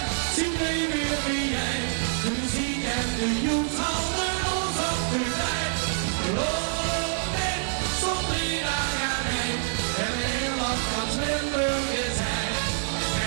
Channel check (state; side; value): silent; left; digital silence